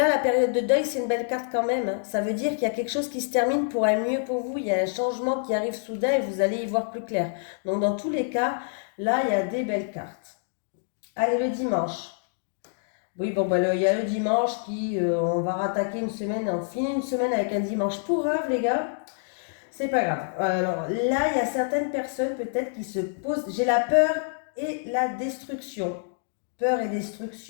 la période de deuil, c'est une belle carte quand même, hein. Ça veut dire qu'il y a quelque chose qui se termine pour un mieux pour vous. Il y a un changement qui arrive soudain et vous allez y voir plus clair. Donc, dans tous les cas, là, il y a des belles cartes. Allez, le dimanche. Oui, bon, bah, il y a le dimanche qui, on va rattaquer une semaine, on finit une semaine avec un dimanche pourrave, les gars. C'est pas grave. Alors là, il y a certaines personnes peut-être qui se posent. J'ai la peur et la destruction. Peur et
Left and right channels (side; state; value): right; silent; digital silence